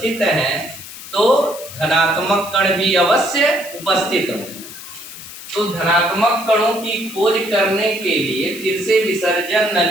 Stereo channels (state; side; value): noise; left; hiss, 13 dB below the sound